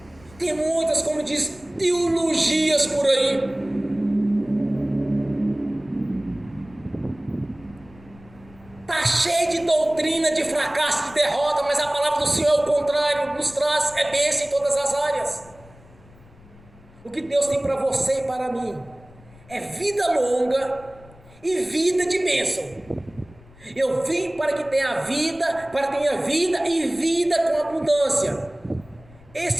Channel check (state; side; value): noise; left; rumble, 24 dB below the sound